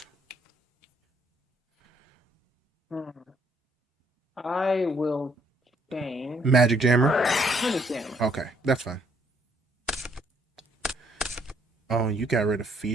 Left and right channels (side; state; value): both; normal; correlation 0.67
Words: I will change. Magic Jammer? Magic Jammer. Okay, that's fine. Oh, you got rid of